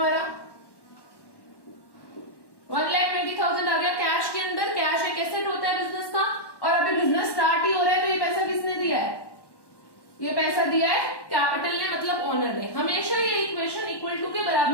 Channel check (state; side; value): late; right; 1.1 ms